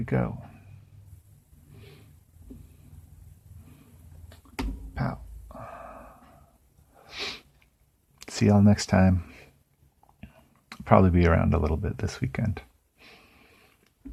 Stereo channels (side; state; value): both; identical; correlation 1.00